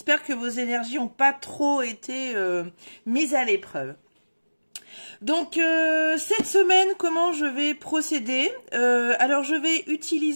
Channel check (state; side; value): inverted; both; correlation -1.00